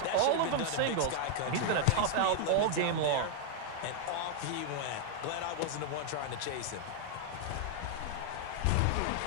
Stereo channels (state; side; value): different; both; correlation 0.00